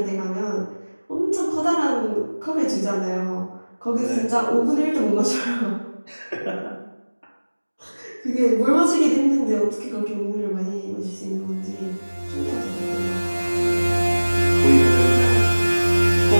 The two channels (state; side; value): inverted; both; correlation -1.00